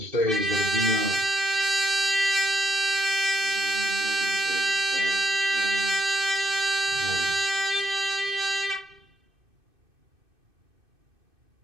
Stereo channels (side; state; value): left; late; 2.6 ms